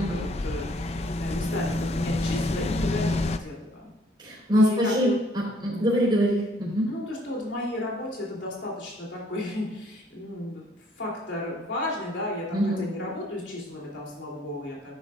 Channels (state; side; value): normal; both; correlation 0.63